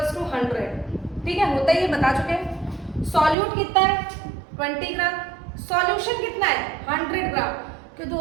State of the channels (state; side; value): drops out; left; at 3.4 s